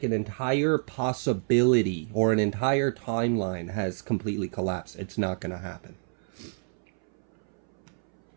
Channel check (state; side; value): silent; left; 59 dB below the other